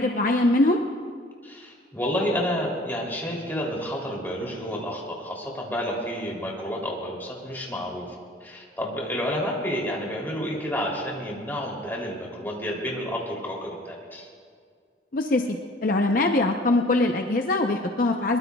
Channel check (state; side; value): normal; both; correlation 0.50